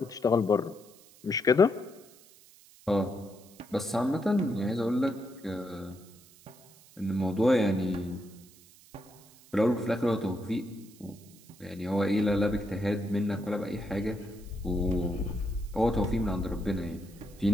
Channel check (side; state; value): right; noise; hiss, 24 dB below the sound